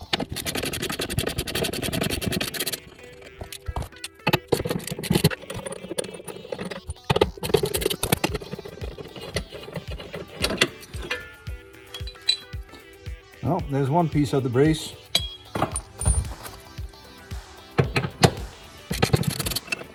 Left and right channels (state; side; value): identical; both; correlation 1.00